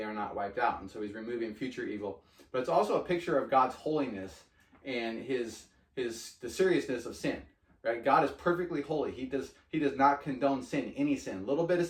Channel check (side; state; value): both; identical; correlation 1.00